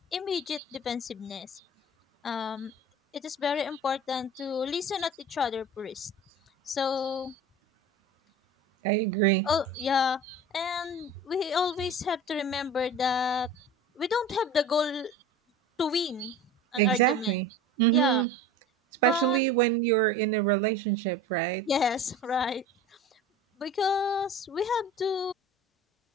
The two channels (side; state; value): both; normal; correlation 0.37